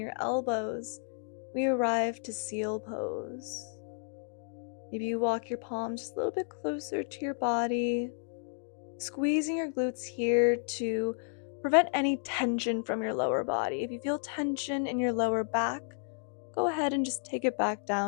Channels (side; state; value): right; silent; 56 dB below the other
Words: elbows. We arrive to seal pose. Maybe you walk your palms just a little bit closer to your body, squeezing your glutes here to Prevent any tension from your lower body. If you feel tension in your lower back, go ahead and just take it back